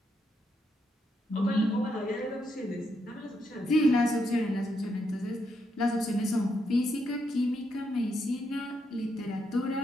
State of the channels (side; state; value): both; normal; correlation 0.79